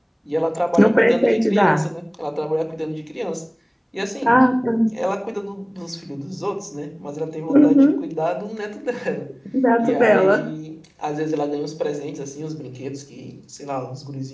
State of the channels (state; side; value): identical; both; correlation 1.00